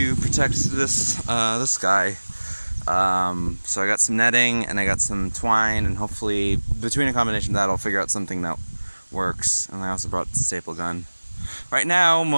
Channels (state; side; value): inverted; both; correlation -1.00